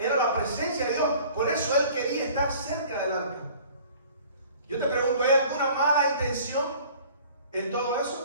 la presencia de Dios. Por eso él quería estar cerca del arca. Yo te pregunto, ¿hay alguna mala intención en todo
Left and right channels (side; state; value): both; inverted; correlation -0.49